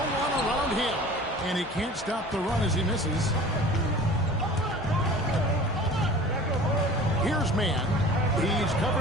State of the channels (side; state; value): both; normal; correlation 0.42